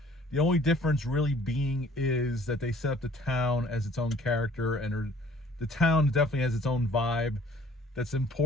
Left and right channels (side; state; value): both; normal; correlation 0.55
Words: The only difference really being is that they set up the town as its own character, and the town definitely has its own vibe that's